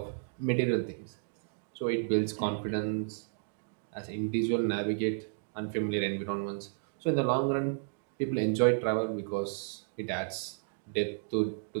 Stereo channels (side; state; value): left; silent; digital silence